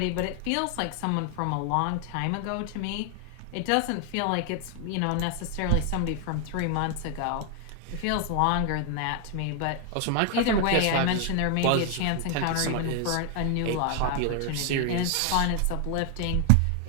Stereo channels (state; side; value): different; both; correlation 0.00